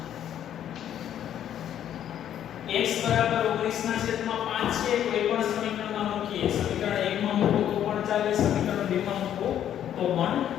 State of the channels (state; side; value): quieter; right; 10.4 dB